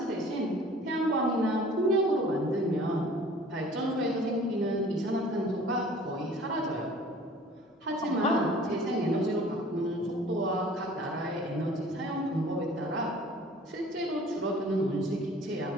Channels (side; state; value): both; normal; correlation 0.49